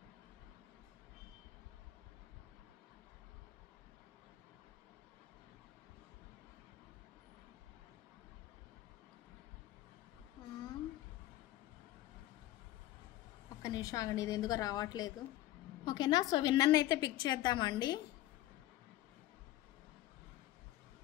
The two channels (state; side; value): quieter; right; 15.1 dB